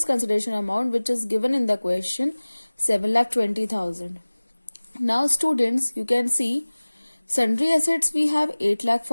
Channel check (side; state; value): both; inverted; correlation -1.00